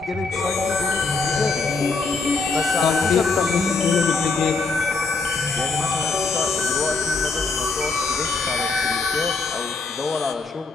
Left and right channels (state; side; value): quieter; right; 4.1 dB